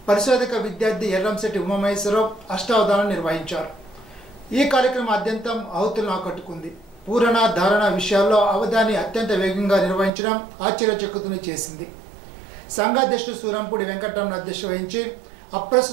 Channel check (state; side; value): drops out; left; at 10.1 s